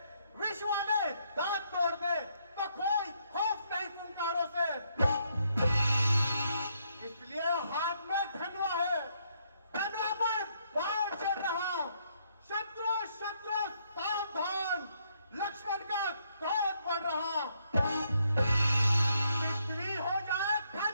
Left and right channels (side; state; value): both; inverted; correlation -0.73